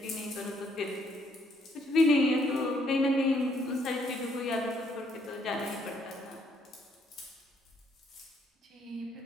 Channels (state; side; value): normal; both; correlation 0.69